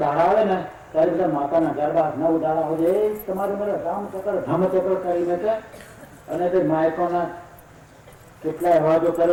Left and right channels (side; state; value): both; identical; correlation 1.00